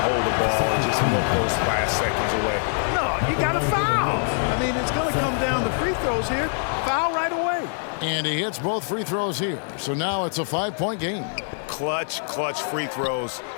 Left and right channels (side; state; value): right; silent; digital silence